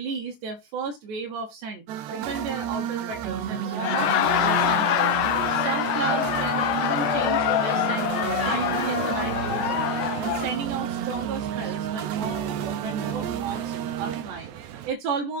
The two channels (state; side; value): late; left; 14 ms